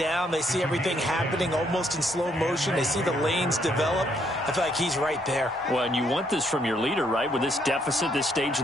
They see everything happening almost in slow motion. They see the lanes develop. I feel like he's right there. Well, and you want this from your leader, right? With this deficit, this stage of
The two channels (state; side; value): normal; both; correlation 0.71